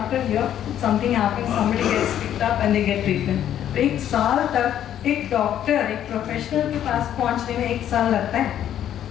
a year something happens, somebody gets picked up and they get treatment. एक साल तक एक doctor, एक professional के पास पहुंचने में एक साल लगता है.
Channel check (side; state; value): right; quieter; 10.7 dB